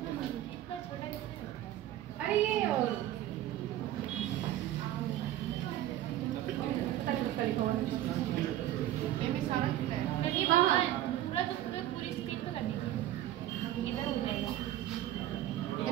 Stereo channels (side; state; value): left; quieter; 13.3 dB